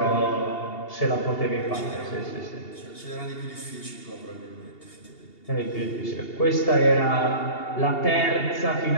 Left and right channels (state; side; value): late; right; 2.8 ms